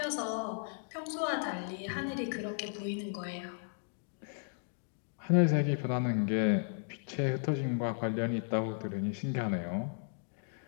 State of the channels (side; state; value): right; silent; digital silence